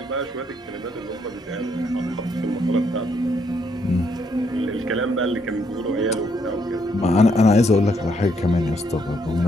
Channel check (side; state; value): both; normal; correlation 0.73